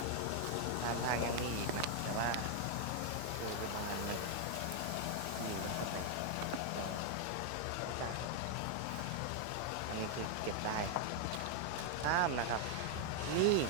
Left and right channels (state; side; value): different; both; correlation 0.00